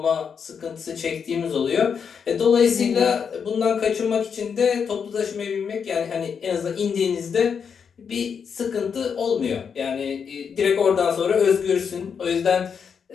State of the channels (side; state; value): right; quieter; 6.7 dB